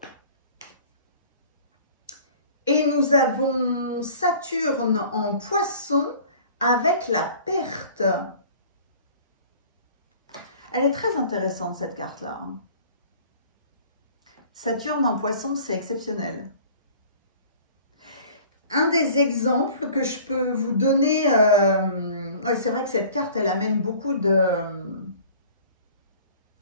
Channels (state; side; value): inverted; both; correlation -0.47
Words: Et nous avons Saturne en poisson avec la perte. Elle est très intéressante cette carte-là. Saturne en poisson, c'est exceptionnel. Un des exemples que je peux vous donner, c'est vrai que cette carte, elle amène beaucoup de...